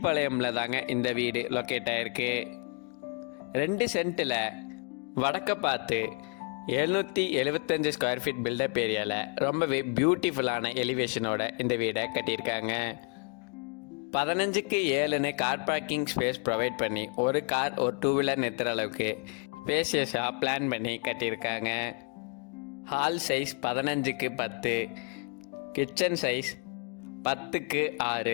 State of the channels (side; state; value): right; quieter; 36.9 dB